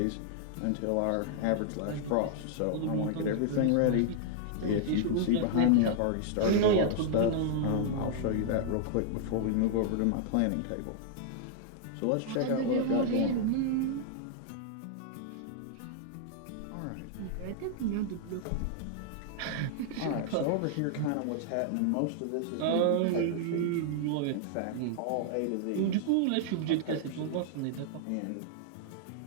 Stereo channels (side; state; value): both; different; correlation -0.01